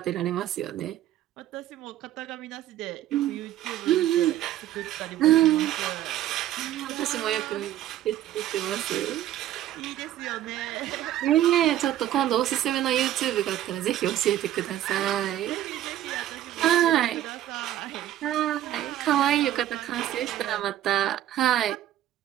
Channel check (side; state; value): left; quieter; 12.6 dB